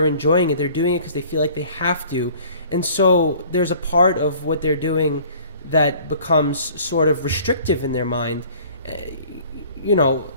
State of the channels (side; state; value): both; inverted; correlation -0.51